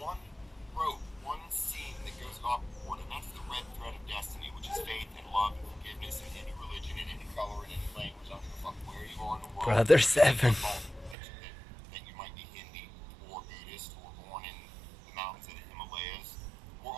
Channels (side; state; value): left; drops out; at 11.2 s